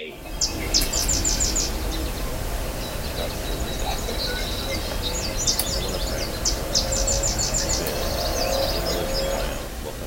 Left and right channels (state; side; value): identical; both; correlation 1.00